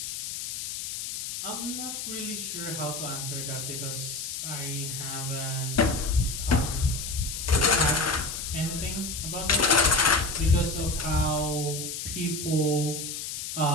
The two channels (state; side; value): noise; left; hiss, 5 dB below the sound